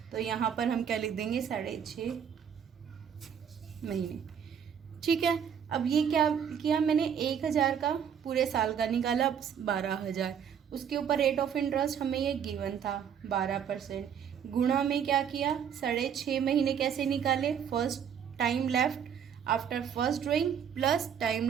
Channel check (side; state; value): left; quieter; 8.1 dB